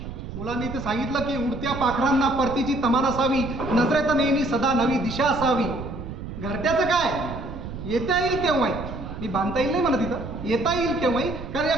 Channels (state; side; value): noise; right; rumble, 9 dB below the sound